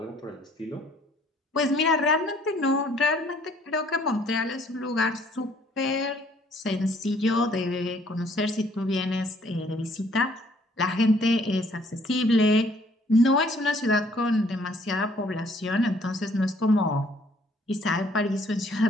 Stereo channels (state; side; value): normal; both; correlation 0.61